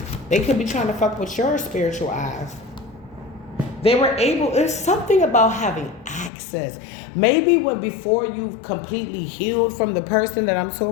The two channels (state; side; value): drops out; right; at 6.3 s